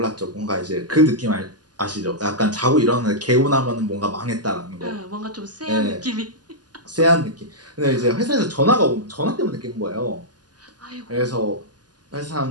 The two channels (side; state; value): left; late; 0.69 ms